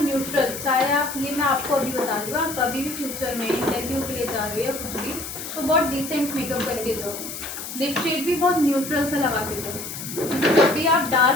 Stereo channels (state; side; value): noise; left; hiss, 8 dB below the sound